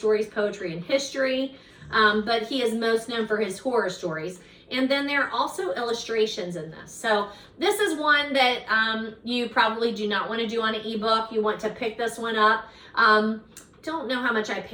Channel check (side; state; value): both; identical; correlation 1.00